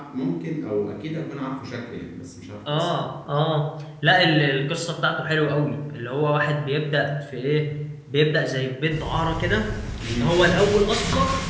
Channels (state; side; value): identical; both; correlation 1.00